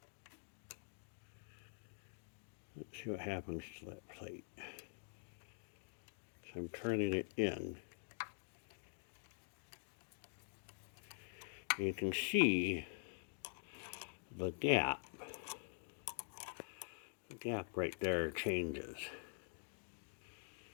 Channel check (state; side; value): silent; right; digital silence